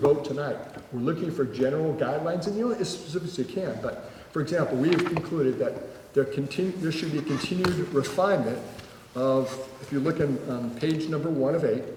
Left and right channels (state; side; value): identical; both; correlation 1.00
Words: tonight, we're looking for general guidelines, and as specific as you can. But for example, we have concluded that there should be a continued refinement of, if you look on page number 1 of 8,